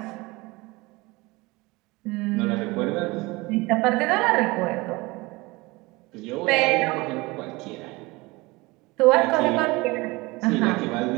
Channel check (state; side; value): quieter; left; 23.0 dB